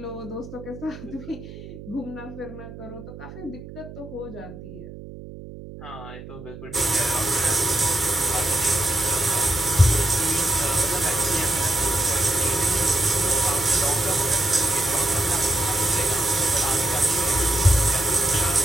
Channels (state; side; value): noise; right; hum, 14 dB below the sound